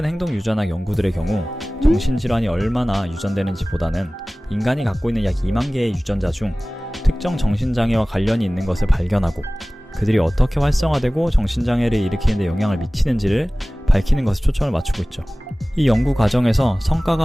행동 유전학 연구들의 경우 정신질환이 얼마나 유전되는지 보다는 인간이 갖고 있는 약 2만 개의 유전자 중 특정 정신장애와 관련이 있는 것을 발견하고 그들이 어떻게 활성화되고 정신장애를 일으키는 데 영향을 미치는지를 밝히는 것에 초점을 맞추고 있죠. 이 연구 과정에서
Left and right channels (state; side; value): normal; both; correlation 0.98